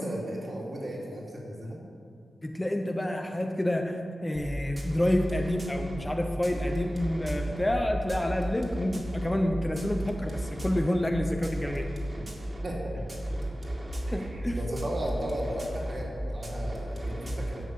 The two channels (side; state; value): both; normal; correlation 0.96